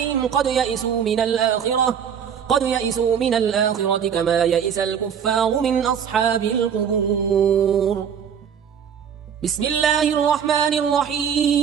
قد يئسوا من الآخرة كما يئس الكفار من أصحاب القبور. بسم الله الرحمن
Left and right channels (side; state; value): left; quieter; 7.9 dB